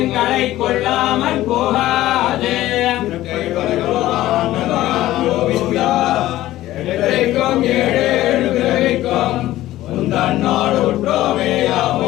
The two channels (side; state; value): right; quieter; 15.2 dB